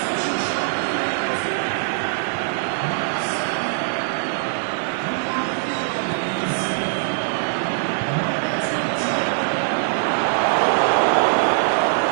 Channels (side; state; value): left; silent; digital silence